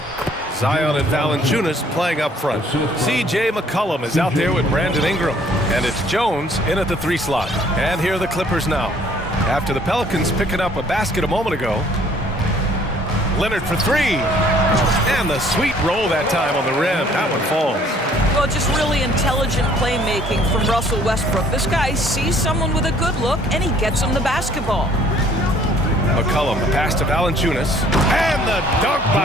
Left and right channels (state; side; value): normal; both; correlation 0.59